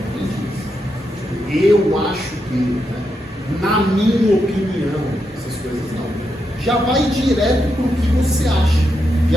Eu acho que, né? Na minha opinião, essas coisas não. Já vai direto para o que você acha.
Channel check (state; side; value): normal; both; correlation 0.84